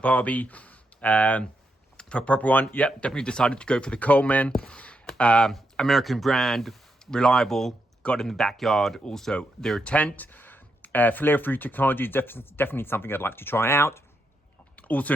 for a proper one. Yep, definitely decided to go for the Coleman. American brand, reliable, got in the backyard. Also their tent. Flare-free technology is definitely something I'd like to try out.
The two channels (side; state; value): both; normal; correlation 0.82